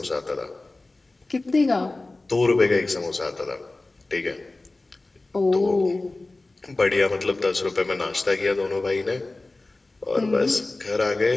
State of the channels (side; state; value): right; quieter; 3.1 dB